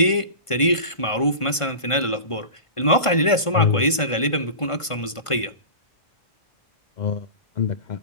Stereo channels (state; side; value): late; right; 1.5 ms